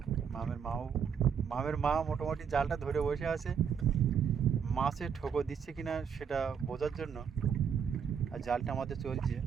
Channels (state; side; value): quieter; left; 7.2 dB